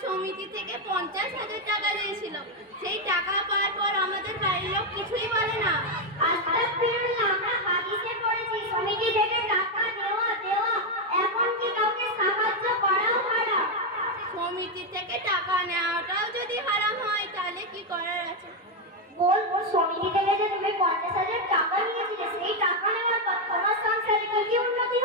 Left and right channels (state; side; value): normal; both; correlation 0.04